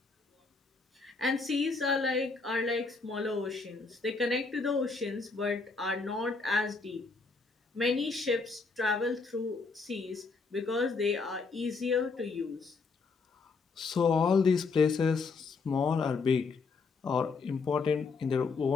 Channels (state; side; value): quieter; right; 4.3 dB